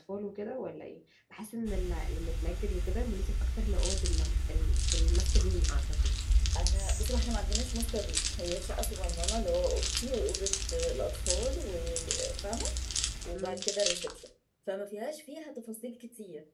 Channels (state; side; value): identical; both; correlation 1.00